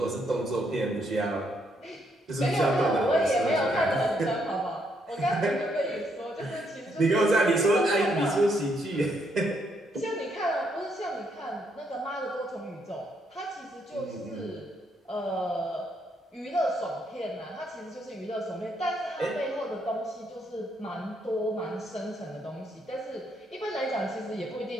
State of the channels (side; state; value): both; normal; correlation 0.74